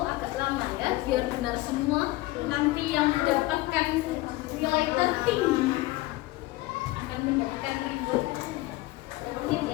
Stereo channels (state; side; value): quieter; right; 19.2 dB